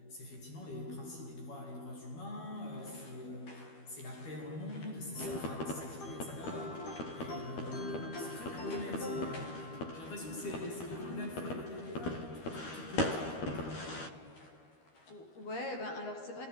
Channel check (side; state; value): right; late; 13 ms